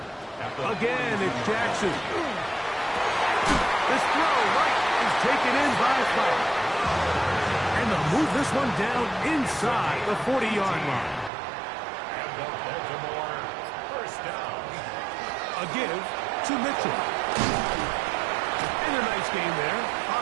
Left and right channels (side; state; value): left; drops out; at 11.3 s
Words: Again, it's Jackson. This throw right is taken in by Fowler. And they'll move this one down inside the 40-yard line. And the Baltimore 1st down. A give to Mitchell. And a nice game there